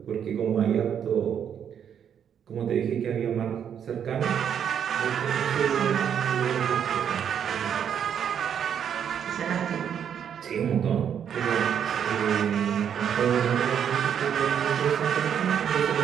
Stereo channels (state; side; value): quieter; left; 8.5 dB